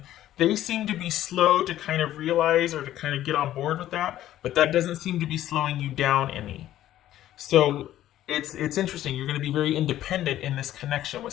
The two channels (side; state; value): right; quieter; 13.1 dB